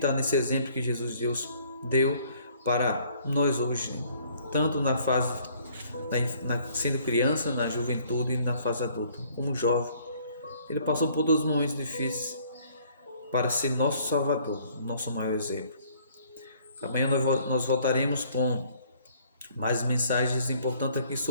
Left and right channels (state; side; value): inverted; both; correlation -0.60